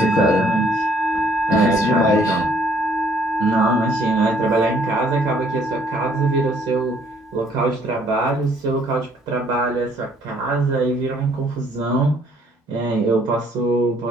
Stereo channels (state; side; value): normal; both; correlation 0.63